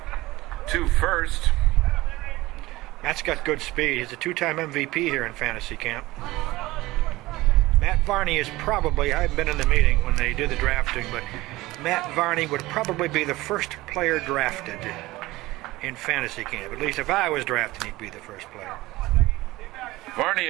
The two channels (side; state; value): left; quieter; 19.0 dB